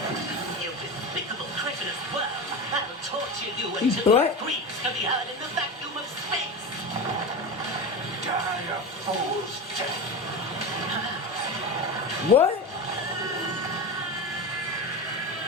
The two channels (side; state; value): both; normal; correlation 0.23